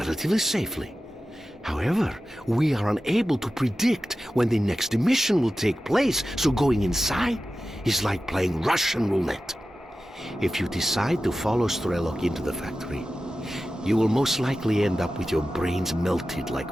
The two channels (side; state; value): both; normal; correlation 0.94